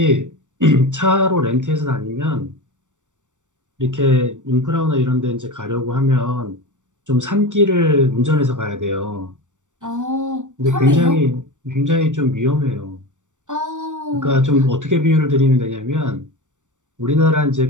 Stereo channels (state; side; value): late; left; 0.85 ms